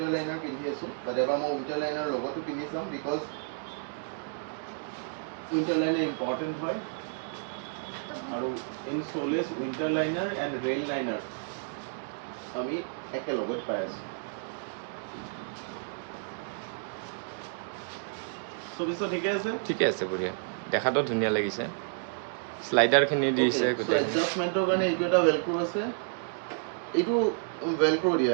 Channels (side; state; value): left; silent; digital silence